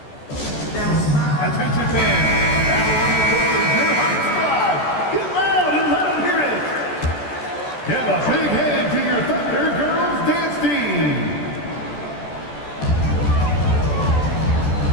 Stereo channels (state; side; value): late; right; 14 ms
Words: Attention fans. Get loud and let them hear it. Give a big hand to your Thunder Girls dance team.